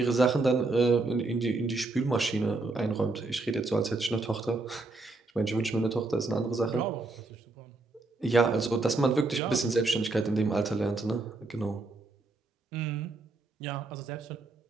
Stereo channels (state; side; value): quieter; left; 3.3 dB